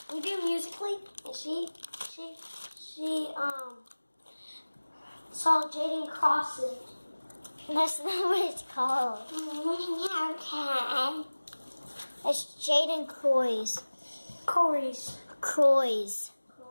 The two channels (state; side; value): inverted; both; correlation -1.00